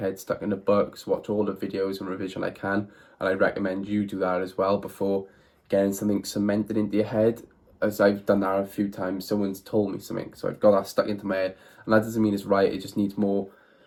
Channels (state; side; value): identical; both; correlation 1.00